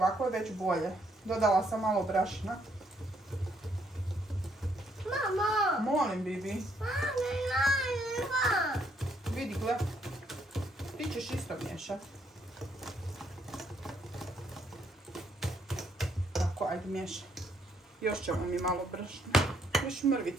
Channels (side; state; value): both; normal; correlation 0.71